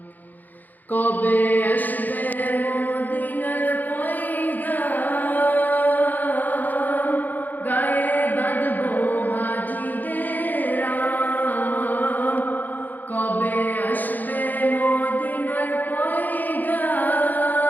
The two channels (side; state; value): right; late; 0.084 ms